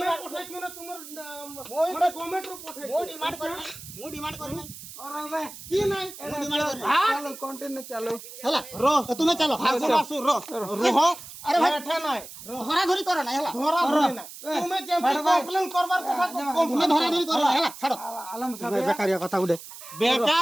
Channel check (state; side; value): noise; right; hiss, 14 dB below the sound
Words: demand পঠাইছো না তোমার মই মানে গভর্নমেন্ট রূপ পঠাইছো মু ডিমান্ড করি নাই अरे बे কি নাই মু ডিমান্ড করি चलो कंटिन्यू चलो হেলা রো তুমি চলো আসু আসু রো রোহ আরে ভাই এঠা নাই ধরা ধরি করো না হেলা ধরা ধরি না তুমি যে কমপ্লেন করবার কথা তুমি ধরা ধরি করো না হেলা ছাড়ো आलम सब বেকারিয়া কথা উঠে